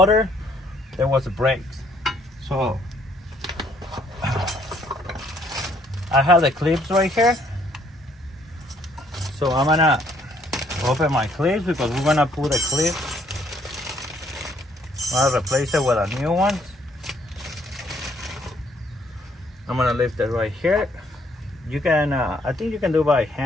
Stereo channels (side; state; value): both; normal; correlation 0.66